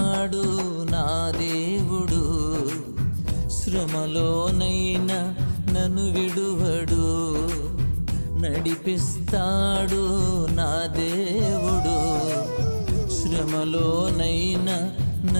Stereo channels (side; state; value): both; inverted; correlation -1.00